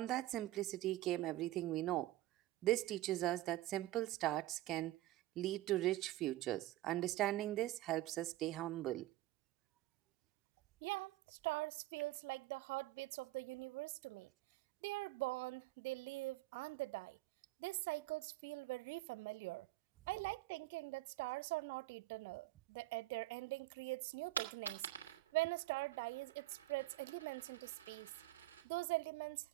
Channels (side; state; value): left; quieter; 16.0 dB